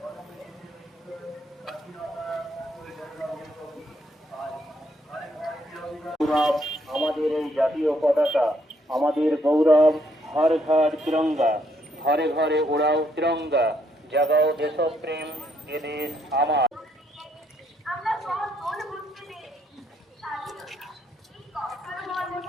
আমাদের এই জাতীয় পতাকা, আমাদের গৌরব। হর ঘর তিরঙ্গা, ঘরে ঘরে ওড়াও তিরঙ্গা, জাগাও দেশপ্রেম, এ দেশ আমার।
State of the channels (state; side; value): normal; both; correlation 0.72